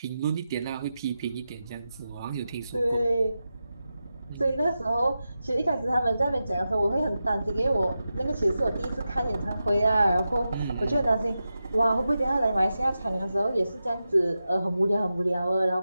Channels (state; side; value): inverted; both; correlation -0.91